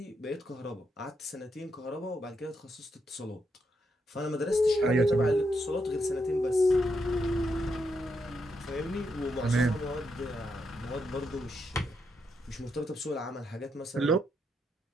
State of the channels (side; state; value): both; normal; correlation 0.81